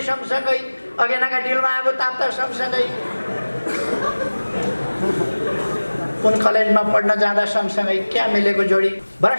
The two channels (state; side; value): inverted; both; correlation -1.00